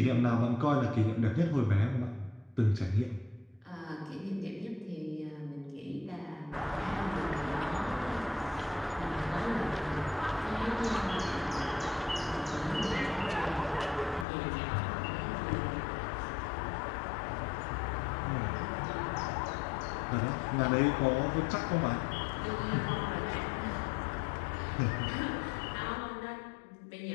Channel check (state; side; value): drops out; right; at 14.2 s